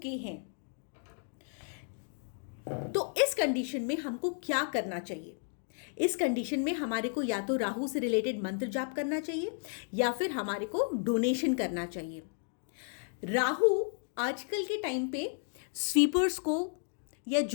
हैं। तो इस कंडीशन में हमको क्या करना चाहिए? इस कंडीशन में हमारे को या तो राहु से रिलेटेड मंत्र जाप करना चाहिए या फिर हमारे को डोनेशन करना चाहिए। राहु आजकल के टाइम पे स्वीपर्स को या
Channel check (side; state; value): right; silent; 56 dB below the other